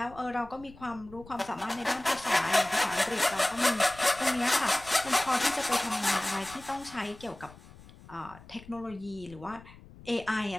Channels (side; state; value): left; noise; rumble, 20 dB below the sound